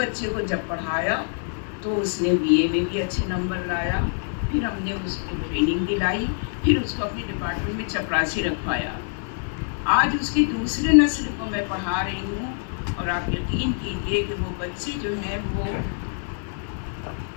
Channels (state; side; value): silent; right; 62 dB below the other